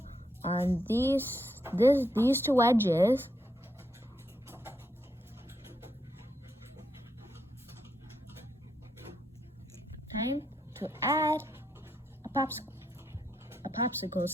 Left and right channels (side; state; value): both; normal; correlation 0.80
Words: on these two edges. Time to add a popsicle